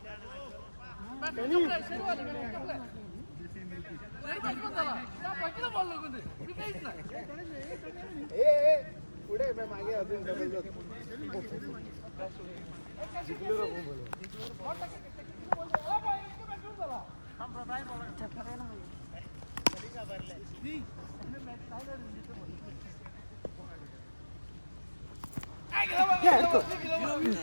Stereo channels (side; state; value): both; inverted; correlation -1.00